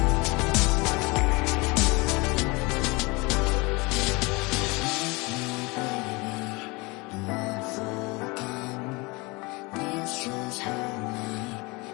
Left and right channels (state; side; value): quieter; right; 25.7 dB